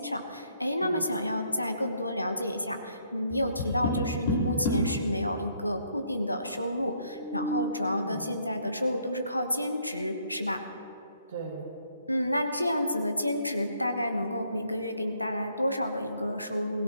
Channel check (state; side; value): inverted; both; correlation -0.69